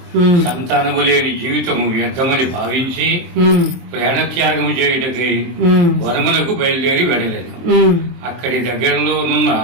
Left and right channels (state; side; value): late; left; 24 ms